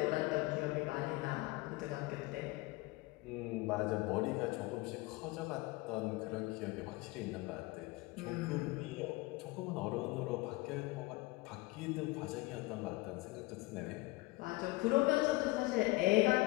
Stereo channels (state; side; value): quieter; right; 21.5 dB